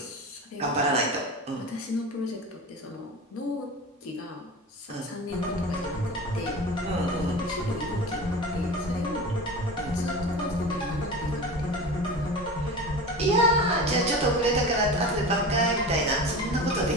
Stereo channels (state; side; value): normal; both; correlation 0.31